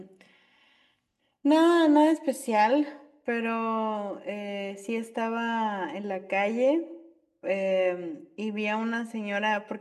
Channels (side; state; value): both; identical; correlation 1.00